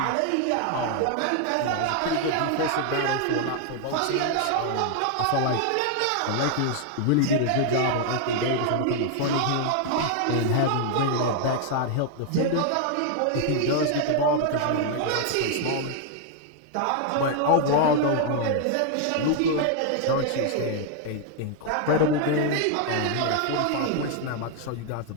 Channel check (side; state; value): both; different; correlation 0.00